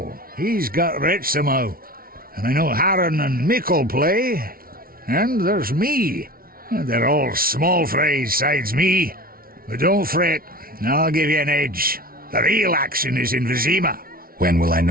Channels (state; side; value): late; left; 0.43 ms